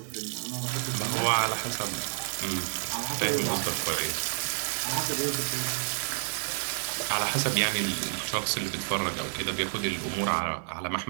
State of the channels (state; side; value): silent; left; digital silence